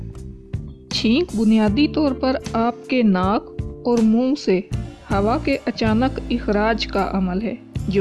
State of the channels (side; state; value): both; identical; correlation 1.00